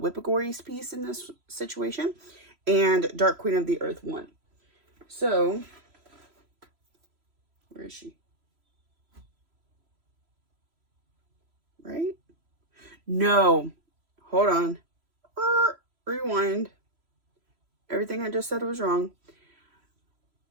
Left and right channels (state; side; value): late; left; 3.0 ms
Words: piece in this situation. and Dark Queen of the Earth 1. So, where is she? Right? No. Hold on. Rewind. Everything I just said was wrong.